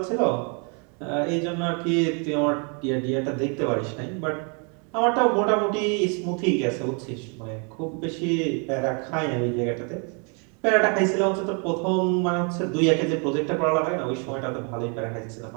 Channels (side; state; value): left; quieter; 37.1 dB